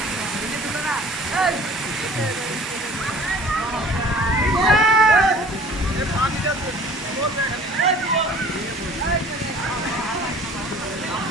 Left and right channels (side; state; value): both; normal; correlation 0.49